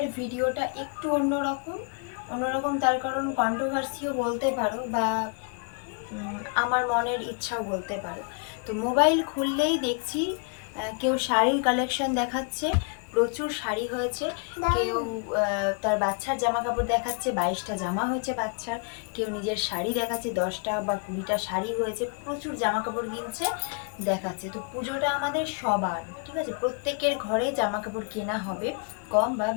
ভিডিওটা একটু অন্যরকম তার কারণ কন্ট্রোভার্সিও বলতে পারো বা আমার মনের ইচ্ছাও বলতে পারো। তো মোবাইল খুললেই দেখছি কেউ শাড়ির কালেকশন দেখাচ্ছে, প্রচুর শাড়ি হয়েছে। কেউ তার বাচ্চার জামা কাপড় দেখাচ্ছে, 22টা জামা হয়েছে বাচ্চার। কেউ নিজের শাড়ি দেখাচ্ছে, 10টা বা 20টা শাড়ি হয়েছে, প্রচুর জামা কাপড় কিনছে, দেখাচ্ছে। তো পুজোটা আমাদের সবার, ঠিক আছে, প্রত্যেকের ঘরেই জামা কাপড় কেনা হবে, কম বা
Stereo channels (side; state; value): right; quieter; 37.1 dB